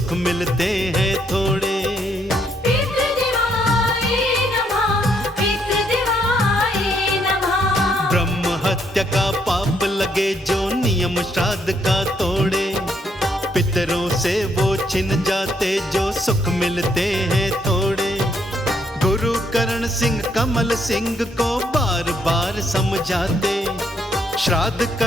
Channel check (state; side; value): normal; both; correlation 0.72